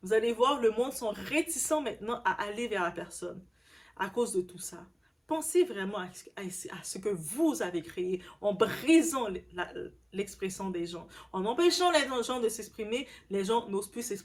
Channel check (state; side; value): identical; both; correlation 1.00